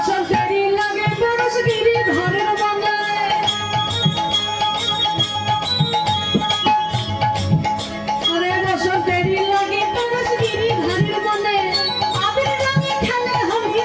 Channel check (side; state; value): both; identical; correlation 1.00